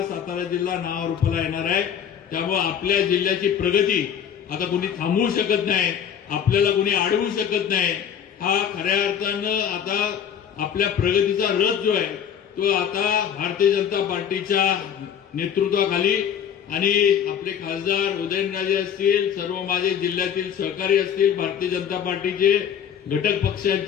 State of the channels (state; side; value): quieter; right; 8.5 dB